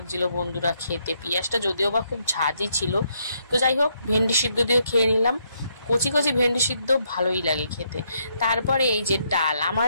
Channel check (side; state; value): both; inverted; correlation -0.75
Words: বন্ধুরা খেতে। পেঁয়াজটা যদিও বা খুব ঝাঁঝই ছিল। তো যাই হোক, ভেন্ডি সিদ্ধ দিয়েও খেয়ে নিলাম। কচি কচি ভেন্ডি সিদ্ধ ভালোই লাগে খেতে। তারপরে এই যে ডাল, আমার